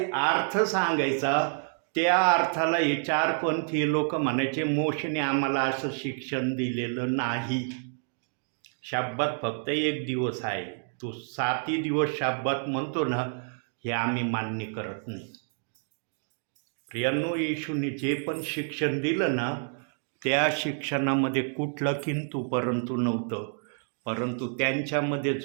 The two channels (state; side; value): silent; left; 59 dB below the other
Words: अर्थ सांगायचा त्या अर्थाला हे चारपंथीय लोक म्हणायचे, मोशेने आम्हाला असं शिक्षण दिलेलं नाही. शब्बात फक्त एक दिवस आहे, तो 7 दिवस शब्बात म्हणतो ना, हे आम्ही मान्य करत नाही. प्रियांनो, येशूने जे पण शिक्षण दिलं ना, त्या शिक्षणामध्ये कुठलं किंतु परंतु नव्हतं. परंतु त्यांच्यामध्ये